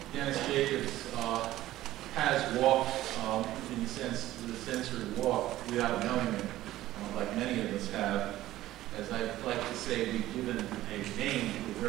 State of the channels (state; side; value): quieter; left; 15.0 dB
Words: Dennis Jacobs has walked, in the sense, the SENCER walk without knowing it, like many of us have. As I like to say, we've given a name to a